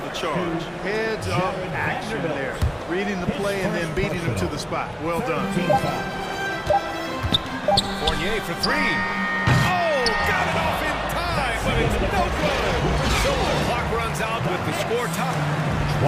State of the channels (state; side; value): identical; both; correlation 1.00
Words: charge. Heads up action there. Reading the play and then beating him to the spot. Well done. Fournier for 3. Oh, got it off in time, but it's no good. So the clock runs out with the score top.